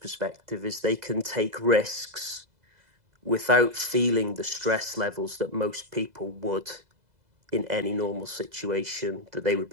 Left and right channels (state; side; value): late; left; 2.0 ms